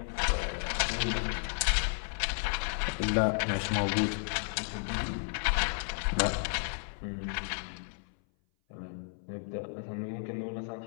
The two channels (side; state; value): right; silent; 56 dB below the other